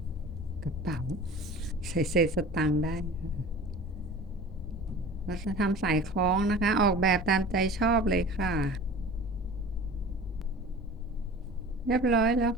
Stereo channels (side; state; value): both; normal; correlation 0.40